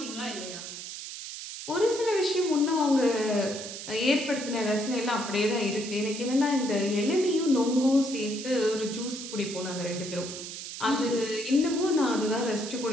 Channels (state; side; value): noise; right; hiss, 9 dB below the sound